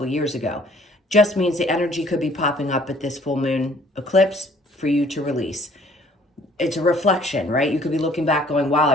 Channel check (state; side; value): normal; both; correlation 0.58